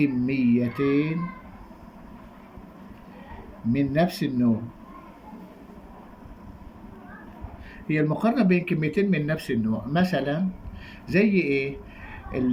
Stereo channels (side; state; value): both; identical; correlation 1.00